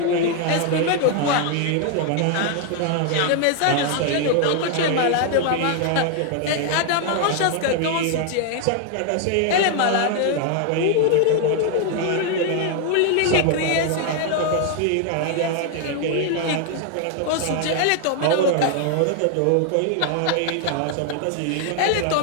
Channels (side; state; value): both; different; correlation 0.00